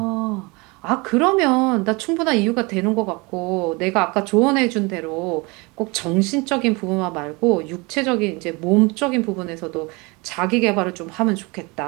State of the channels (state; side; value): quieter; left; 26.9 dB